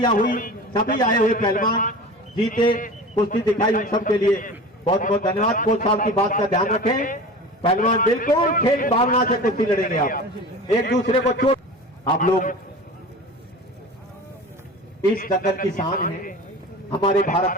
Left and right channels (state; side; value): normal; both; correlation 0.35